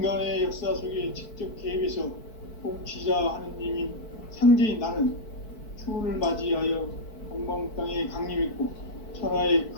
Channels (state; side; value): late; right; 4.6 ms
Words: 역사 속에 직접 개입해서 통치자 하느님인 상제인 나는 추운을 맞이하여 동방 땅에 강림했고 천하의